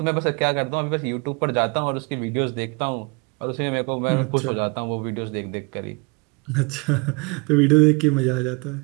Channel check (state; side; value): quieter; left; 30.2 dB